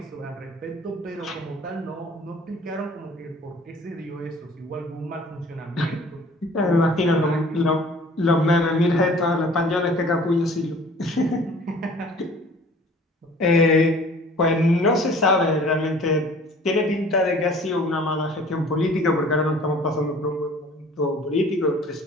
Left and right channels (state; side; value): normal; both; correlation 0.49